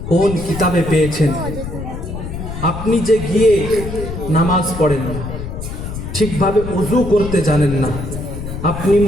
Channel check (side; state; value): left; noise; rumble, 7 dB below the sound